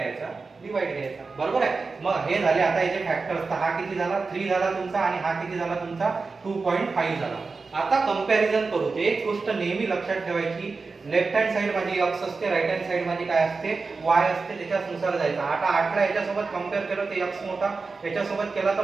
डिवाइड घ्यायचा बरोबर आहे. मग हे झाले आता याचे फॅक्टर्स. तर हा किती झाला 3 झाला तुमचा आणि हा किती झाला तुमचा 2.5 झाला. आता कंपॅरिझन करू. ते एक गोष्ट नेहमी लक्षात ठेवायची, लेफ्ट हँड साइड माझी x असते, राइट हँड साइड माझी काय असते y असते, त्याच्यानुसार जायचं. आता 8 ला याच्यासोबत कंपेअर केलं तर x मोठा, याच्यासोबत केला तर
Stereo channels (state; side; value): quieter; left; 4.2 dB